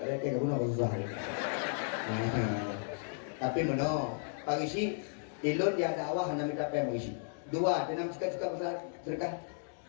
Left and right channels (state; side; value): silent; right; digital silence